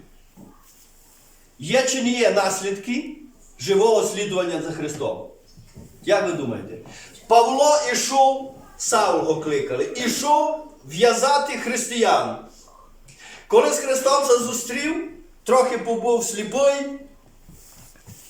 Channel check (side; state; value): both; identical; correlation 1.00